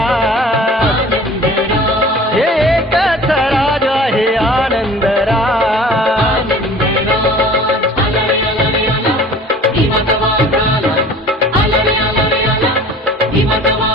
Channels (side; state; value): both; normal; correlation 0.46